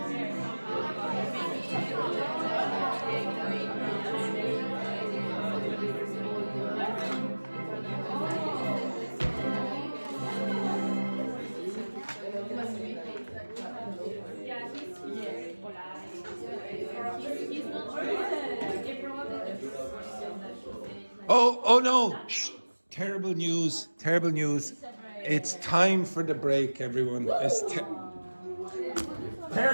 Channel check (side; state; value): both; inverted; correlation -1.00